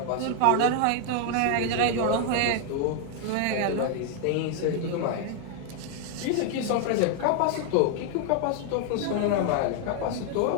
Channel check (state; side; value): different; both; correlation 0.00